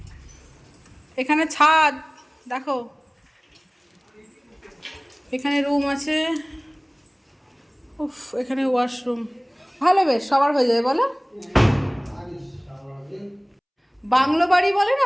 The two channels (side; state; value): both; identical; correlation 1.00